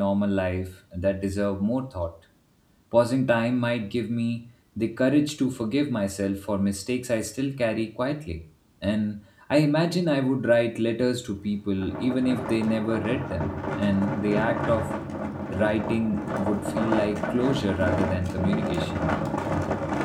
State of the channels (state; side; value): identical; both; correlation 1.00